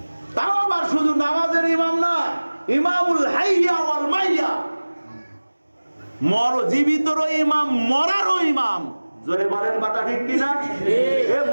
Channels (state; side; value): inverted; both; correlation -1.00